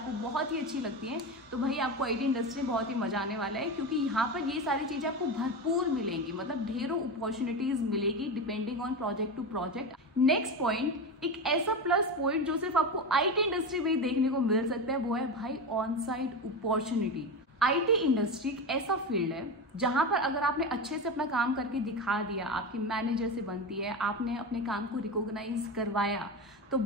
बहुत ही अच्छी लगती हैं, तो भाई आपको आईटी इंडस्ट्री में बहुत ही मजा आने वाला है। क्योंकि यहाँ पर ये सारी चीज़ें आपको भरपूर मिलेंगी, मतलब ढेरों अपॉर्चुनिटीज मिलेगी depending on project to project. Next point, एक ऐसा प्लस पॉइंट जो सिर्फ आपको आईटी इंडस्ट्री में ही देखने को मिल सकता है, वो है भाई on site opportunity. IT industry एक ऐसा फील्ड है जहां पर अगर आपने अच्छे से अपना काम करके दिखा दिया, आपकी मैनेजर से बनती है, आपने अपने काम को रिकॉग्नाइज करवाया, तो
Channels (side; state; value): both; normal; correlation 0.21